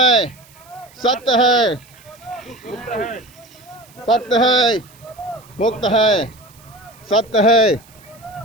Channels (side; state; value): right; noise; hiss, 26 dB below the sound